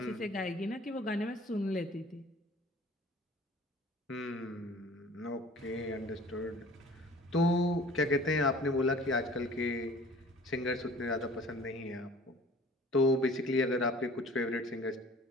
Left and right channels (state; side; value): normal; both; correlation 0.48